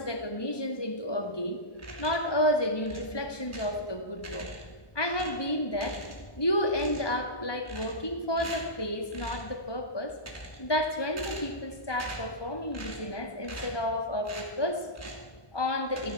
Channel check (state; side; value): late; right; 1.2 ms